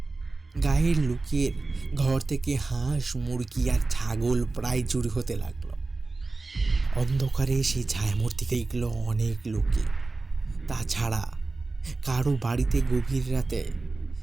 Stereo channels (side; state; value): left; quieter; 3.5 dB